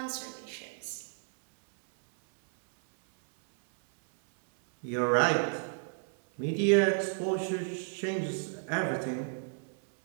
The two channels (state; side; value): silent; left; 57 dB below the other